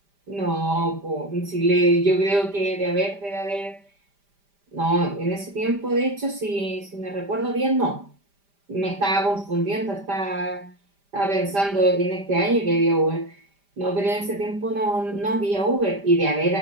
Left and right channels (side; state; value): left; late; 5.0 ms